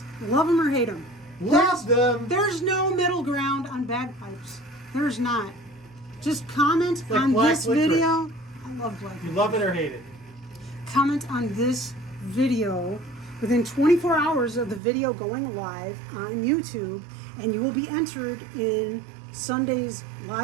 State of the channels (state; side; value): drops out; left; at 14.8 s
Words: Love them or hate them. Love them. There's no middle ground on bagpipes. There's not. Just comment like on black this licorice. video. I love black. You love it or hate it. Comment on this video within 24 hours of the video going live on YouTube, and you will be entered in Sunday's